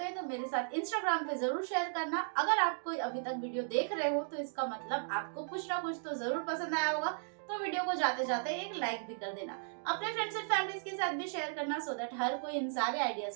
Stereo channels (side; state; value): left; silent; digital silence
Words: हैं तो मेरे साथ इंस्टाग्राम पे जरूर शेयर करना। अगर आप कोई अभी तक वीडियो देख रहे हो तो इसका मतलब आपको कुछ ना कुछ तो जरूर पसंद आया होगा। तो वीडियो को जाते जाते एक लाइक भी कर देना। अपने फ्रेंड्स एंड फैमिलीज के साथ भी शेयर करना सो दैट हर कोई इन सारे आइडियाज